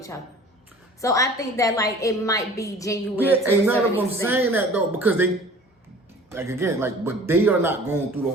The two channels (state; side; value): normal; both; correlation 0.46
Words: other? So I think that it might be genuine. Yeah, ain't none of them saying that though, because they, but they are not going through the